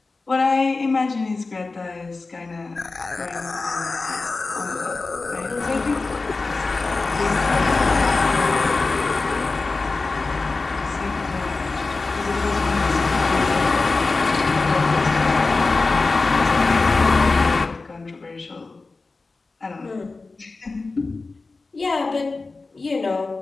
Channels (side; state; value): right; quieter; 3.7 dB